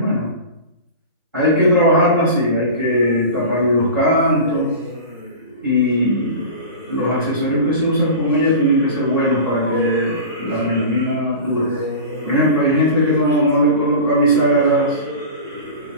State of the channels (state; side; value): inverted; both; correlation -0.32